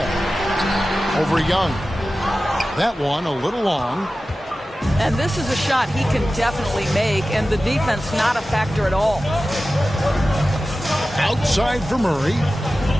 Over Young. That one a little long. And this is a shot he can definitely make, and the defense not a factor at all. Outside for Murray.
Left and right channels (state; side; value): normal; both; correlation 0.95